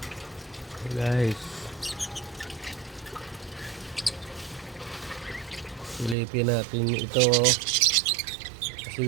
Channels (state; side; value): drops out; left; at 6.2 s